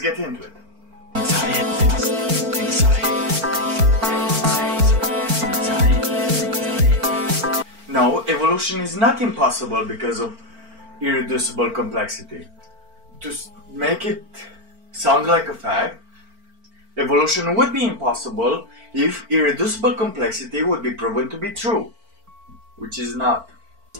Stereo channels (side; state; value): left; late; 4.4 ms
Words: into it. No, evolution is not impossible because of irreducible complexity. To make it sound like a fact, evolution would be impossible if irreducible complexity would be proven to be true, which is not.